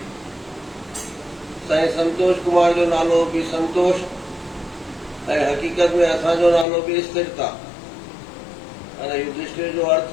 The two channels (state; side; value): drops out; right; at 6.7 s